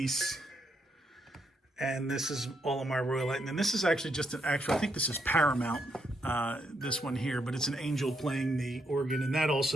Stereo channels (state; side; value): normal; both; correlation 0.78